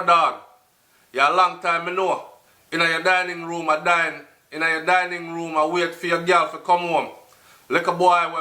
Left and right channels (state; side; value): identical; both; correlation 1.00